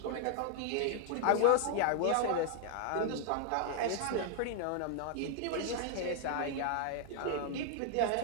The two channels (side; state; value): both; different; correlation 0.00